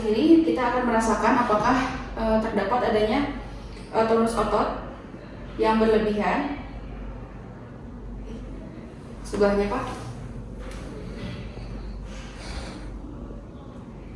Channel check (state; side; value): identical; both; correlation 1.00